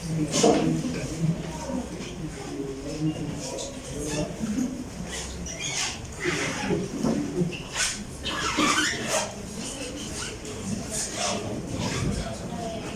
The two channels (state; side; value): identical; both; correlation 1.00